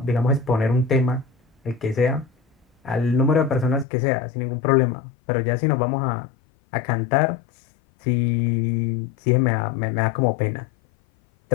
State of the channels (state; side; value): drops out; right; at 3.9 s